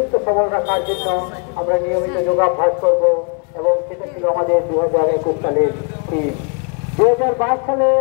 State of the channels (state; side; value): quieter; right; 36.4 dB